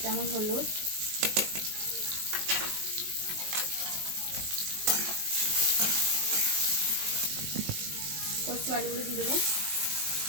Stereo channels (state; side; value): late; left; 19 ms